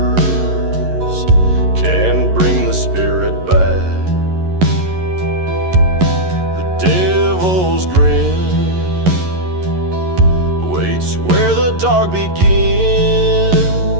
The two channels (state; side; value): late; left; 11 ms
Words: can't bring the spirit back. The devil's grin waits where the dark begins,